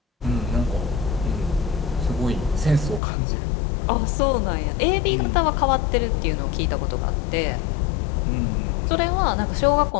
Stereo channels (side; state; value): right; drops out; at 3.0 s